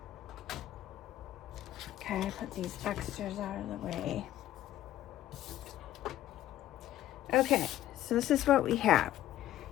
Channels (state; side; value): quieter; right; 13.3 dB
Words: Okay, put these extras out of the way. Okay, so this is what we have.